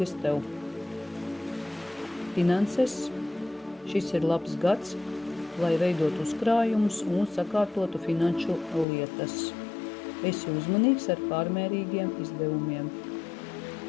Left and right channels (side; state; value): right; drops out; at 8.8 s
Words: tev. Finanses. Šis ir labs gads, lai veidot uzkrājumus un sakārtotu finanšu lietas. Esi uzmanīgs ar pārmērīgiem izdevumiem.